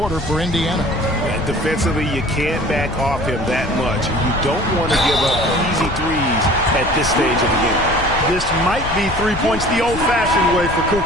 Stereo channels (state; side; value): noise; left; rumble, 9 dB below the sound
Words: for Indiana. Defensively, you can't back off him that much. You don't want to give up easy threes at this stage of the game. This might be 3 points the old-fashioned way for